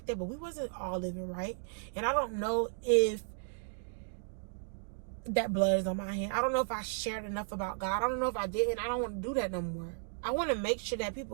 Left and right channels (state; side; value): silent; left; digital silence